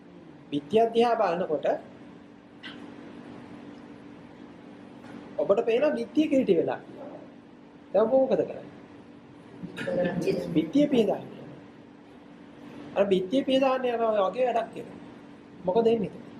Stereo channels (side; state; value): both; identical; correlation 1.00